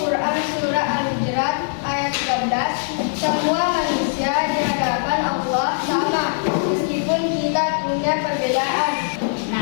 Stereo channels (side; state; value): right; silent; 63 dB below the other